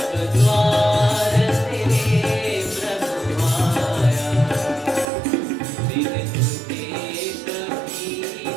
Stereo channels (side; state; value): left; drops out; at 5.1 s